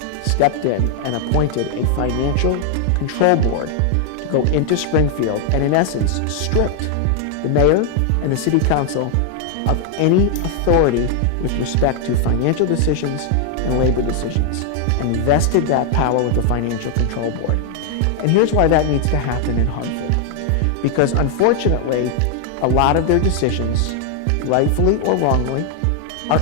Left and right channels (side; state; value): both; different; correlation 0.00